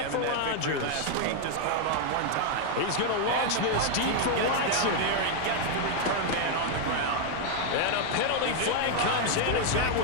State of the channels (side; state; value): both; different; correlation 0.00